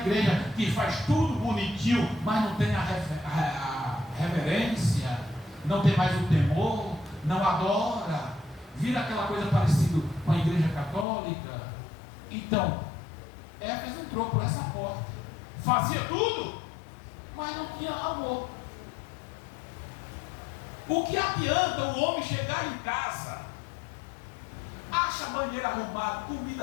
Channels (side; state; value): right; drops out; at 11.1 s